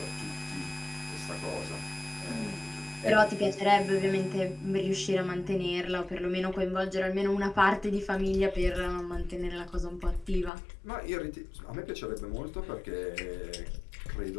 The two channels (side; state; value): right; drops out; at 10.5 s